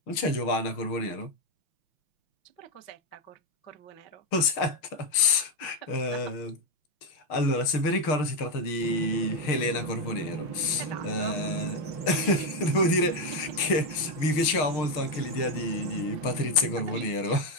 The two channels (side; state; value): right; late; 6.5 ms